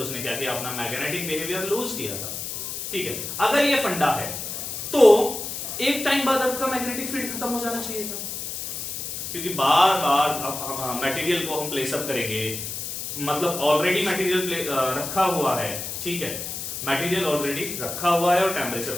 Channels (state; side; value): noise; left; hiss, 6 dB below the sound